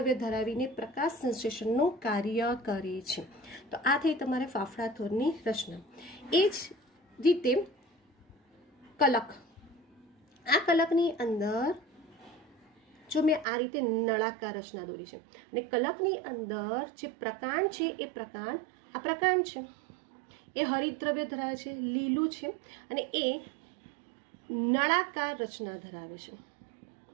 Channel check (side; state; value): left; drops out; at 13.5 s